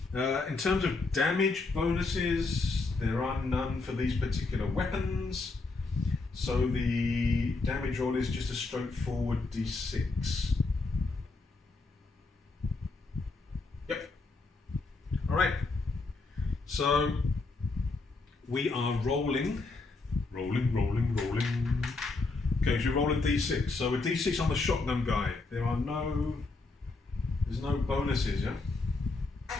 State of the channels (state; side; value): quieter; right; 3.6 dB